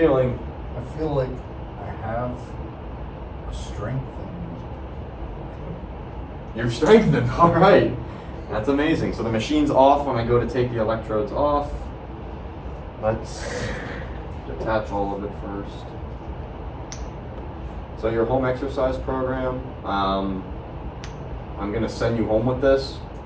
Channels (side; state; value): both; identical; correlation 1.00